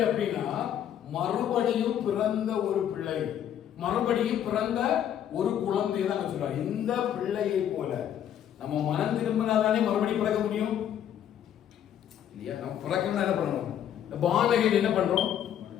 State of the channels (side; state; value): right; quieter; 10.0 dB